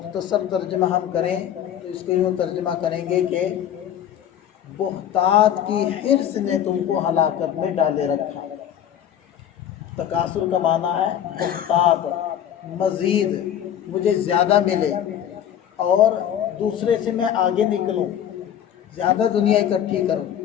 ترجمہ ہم کریں تو اس کو یوں ترجمہ کریں گے کہ بہتات کی حرص نے تم کو ہلاکت میں ڈالے رکھا۔ تکاثر کا معنی ہے بہتات، مزید مجھے زیادہ ملے اور دوسرے سے میں آگے نکلوں، زیادہ دنیا اکٹھی کروں،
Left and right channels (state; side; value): quieter; right; 10.0 dB